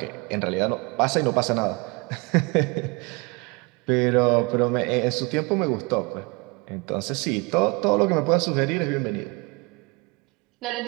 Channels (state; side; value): quieter; left; 27.8 dB